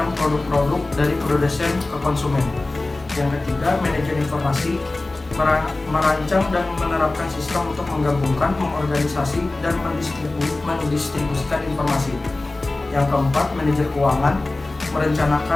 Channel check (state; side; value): quieter; right; 3.0 dB